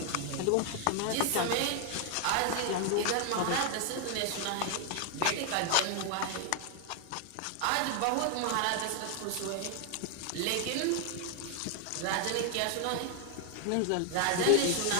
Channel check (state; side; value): different; both; correlation 0.00